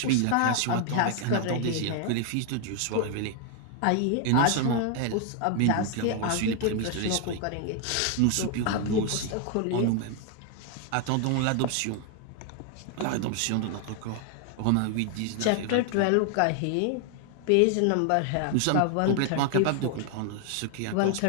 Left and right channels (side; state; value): both; different; correlation 0.00